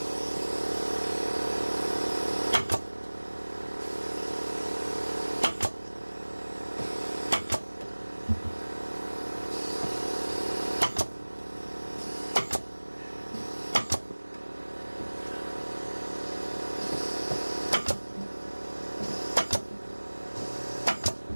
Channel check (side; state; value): both; inverted; correlation -1.00